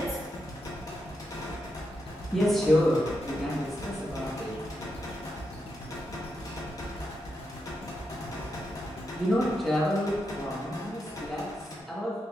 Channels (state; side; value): normal; both; correlation 0.84